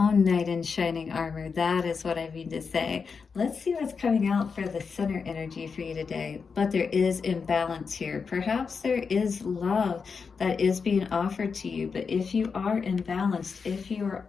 knight in shining armor. That is what I mean to say. Let's see what's coming out for the center energy for you today. But there is imbalance here. Perhaps there is love that is being offered to you. But if you are imbalanced, if you are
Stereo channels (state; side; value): quieter; right; 5.4 dB